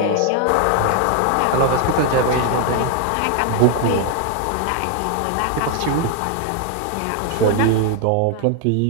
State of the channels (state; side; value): different; both; correlation 0.00